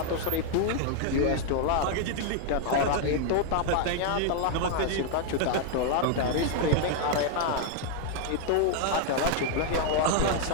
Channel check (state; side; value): different; both; correlation 0.00